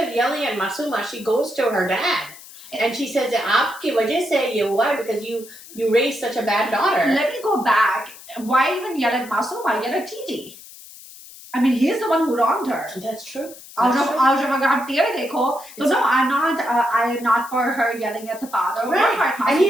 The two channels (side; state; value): left; noise; hiss, 18 dB below the sound